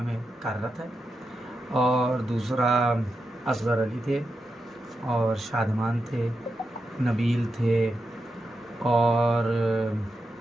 कार्यरत है, और दूसरा असगर अली थे और शादमान थे, नबील थे और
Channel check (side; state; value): both; normal; correlation 0.87